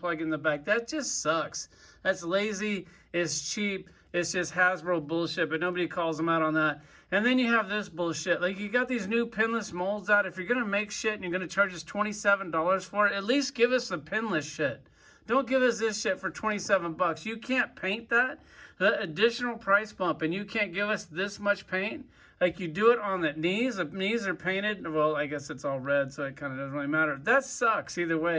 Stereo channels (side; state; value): both; identical; correlation 1.00